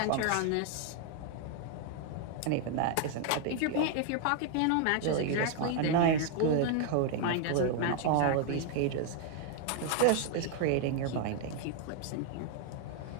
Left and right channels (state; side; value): different; both; correlation 0.00